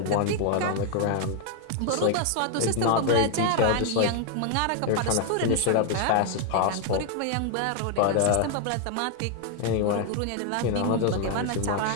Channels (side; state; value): both; different; correlation 0.00